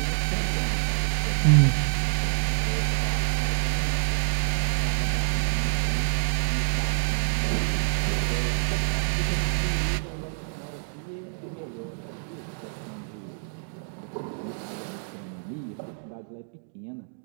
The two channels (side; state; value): left; silent; digital silence